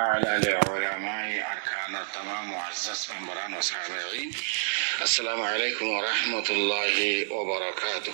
لعلماء أركان التمام معزز ممبران وسامعين السلام عليكم ورحمة الله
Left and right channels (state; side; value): silent; left; digital silence